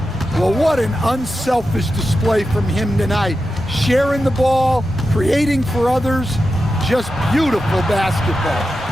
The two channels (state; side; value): normal; both; correlation 0.90